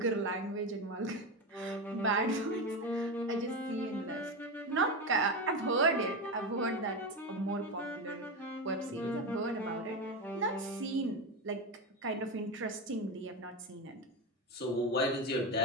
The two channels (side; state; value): both; normal; correlation 0.16